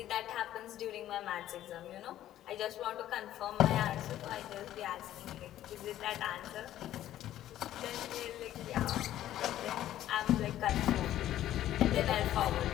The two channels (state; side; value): quieter; right; 12.8 dB